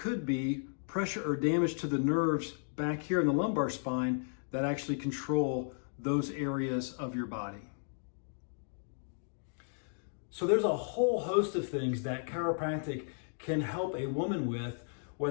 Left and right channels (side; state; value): right; silent; digital silence